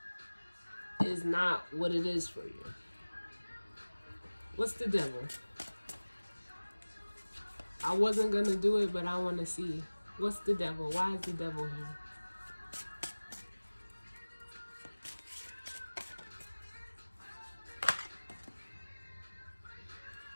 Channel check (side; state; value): both; inverted; correlation -1.00